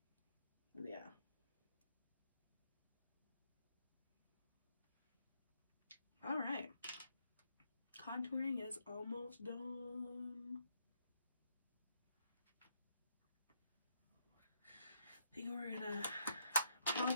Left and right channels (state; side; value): inverted; both; correlation -0.76